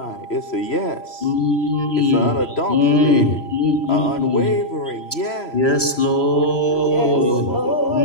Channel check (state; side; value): late; right; 3.0 ms